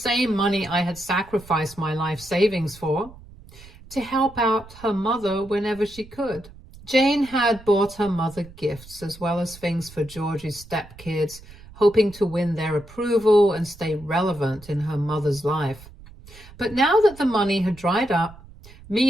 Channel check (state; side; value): noise; right; rumble, 20 dB below the sound